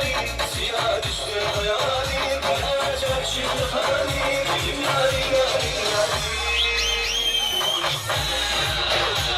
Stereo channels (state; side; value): identical; both; correlation 1.00